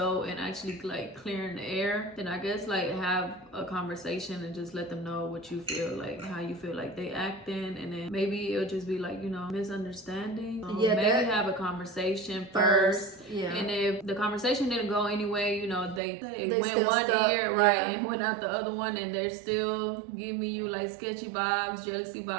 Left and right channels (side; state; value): left; drops out; at 16.0 s